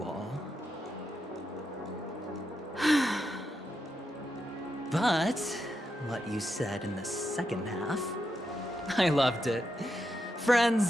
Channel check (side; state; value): both; normal; correlation 0.85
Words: all. But what you said in the second half, I loved it.